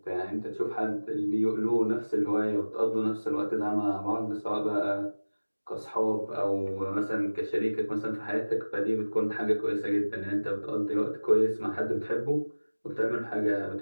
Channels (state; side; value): inverted; both; correlation -1.00